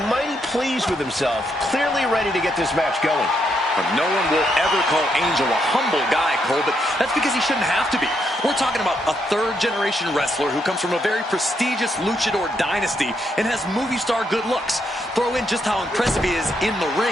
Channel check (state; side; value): normal; both; correlation 0.78